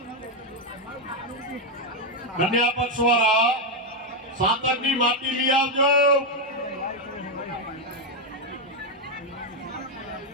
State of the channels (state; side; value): normal; both; correlation 0.04